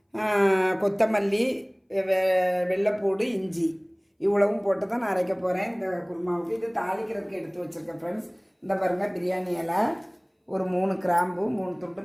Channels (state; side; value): identical; both; correlation 1.00